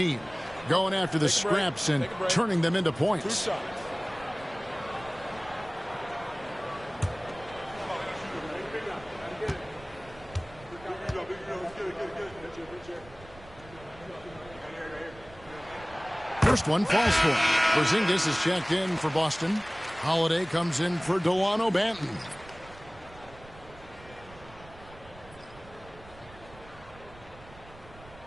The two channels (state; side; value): noise; right; rumble, 21 dB below the sound